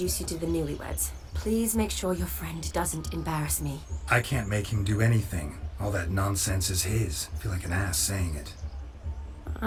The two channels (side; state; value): both; identical; correlation 1.00